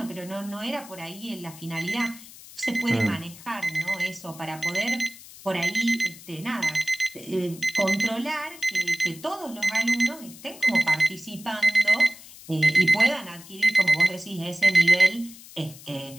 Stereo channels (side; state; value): left; noise; hiss, 18 dB below the sound